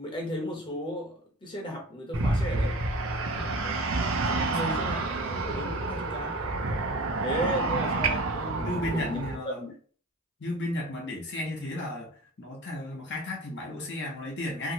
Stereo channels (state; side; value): normal; both; correlation 0.37